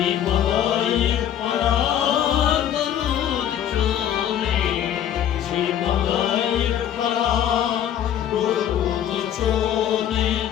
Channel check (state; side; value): quieter; right; 10.3 dB